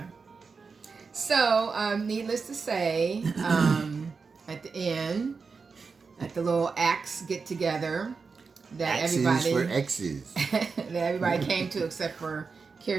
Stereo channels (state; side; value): quieter; left; 4.9 dB